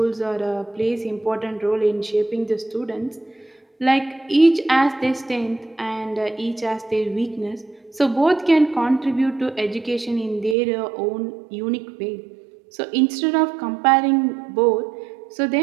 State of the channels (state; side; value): drops out; left; at 10.6 s